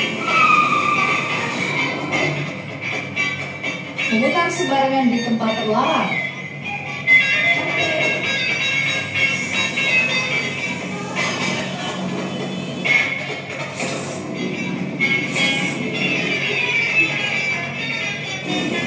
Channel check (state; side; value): identical; both; correlation 1.00